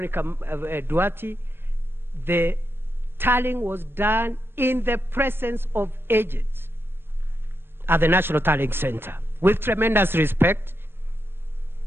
Duarte. The tallying was done in the presence of agents at the National Tallying Center. With tremendous respect,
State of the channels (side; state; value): left; late; 0.11 ms